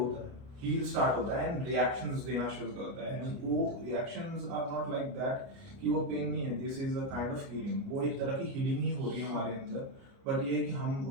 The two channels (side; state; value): left; late; 29 ms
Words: है। हील स्टार्ट होता है एंड रिएक्शंस देना शुरू करता है। एंड वो reactions are not like that कि वो पेन नहीं है, this is a kind of healing. वो एक तरह की हीलिंग ही हो रही है हमारे अंदर, बट ये है कि हम